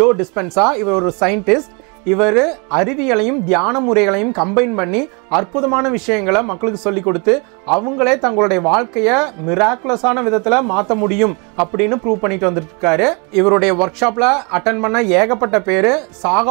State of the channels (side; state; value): left; quieter; 31.9 dB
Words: டிஸ்பென்சா. இவர் ஒரு சயின்டிஸ்ட். இவர் அறிவியலையும் தியான முறைகளையும் கம்பைன் பண்ணி அற்புதமான விஷயங்களை மக்களுக்கு சொல்லி கொடுத்து அவங்களே தங்களுடைய வாழ்க்கையை மிராக்குலஸான விதத்துல மாற்ற முடியும் அப்படின்னு ப்ரூவ் பண்ணிட்டு வந்துருக்காரு. இவருடைய ஒர்க் ஷாப்ல அட்டன் பண்ண ஏகப்பட்ட பேரு